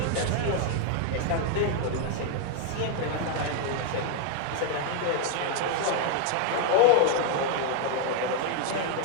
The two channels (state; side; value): different; both; correlation 0.00